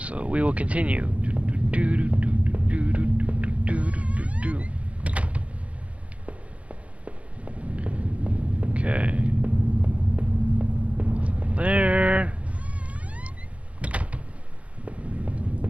we will continue. Okay. There.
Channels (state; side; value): late; left; 0.064 ms